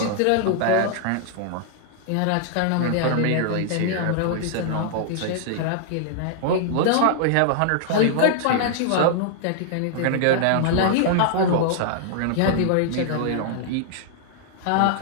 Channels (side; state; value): both; different; correlation -0.01